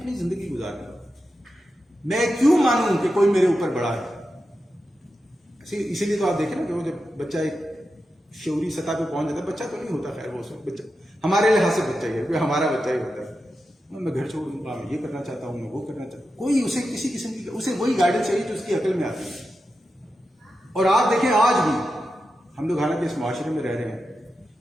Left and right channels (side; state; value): both; normal; correlation 0.90